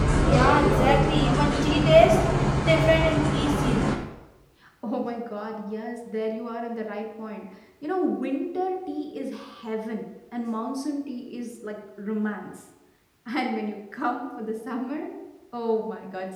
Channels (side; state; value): both; identical; correlation 1.00